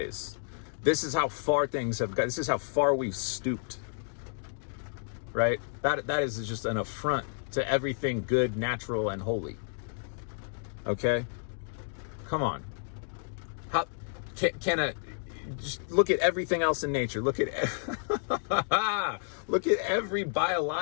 This is how far things have got. This is how far we've stooped. Right? That is just an affront to everything good, natural, and holy. Okay? Come on. How just look at everything else in nature. Look at every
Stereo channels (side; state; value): right; silent; digital silence